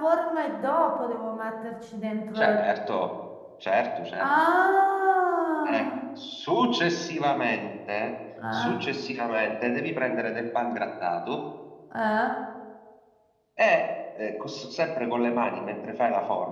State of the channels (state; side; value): identical; both; correlation 1.00